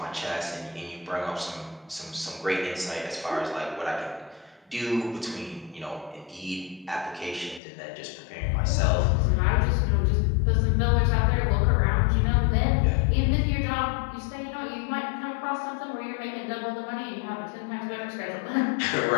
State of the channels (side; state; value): right; drops out; at 7.6 s